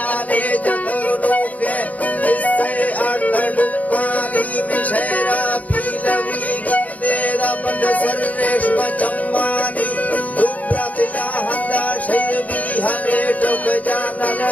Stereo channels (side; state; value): right; late; 0.073 ms